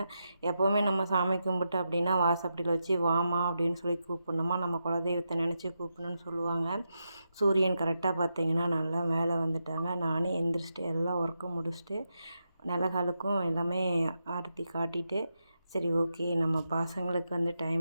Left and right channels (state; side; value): inverted; both; correlation -0.86